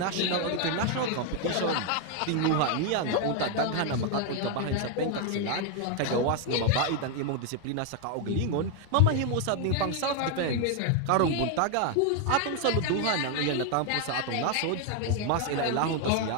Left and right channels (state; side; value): different; both; correlation 0.01